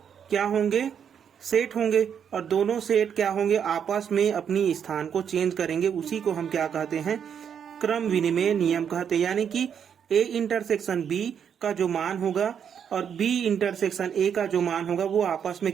क्या होंगे, सेट होंगे, और दोनों सेट क्या होंगे, आपस में अपनी स्थान को चेंज करेंगे। उसी को हम क्या कहते हैं, क्रम विनिमय नियम कहते हैं। यानी कि ए इंटरसेक्शन बी का जो मान होगा और बी इंटरसेक्शन ए का जो मान होगा वो आपस में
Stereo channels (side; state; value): left; quieter; 8.0 dB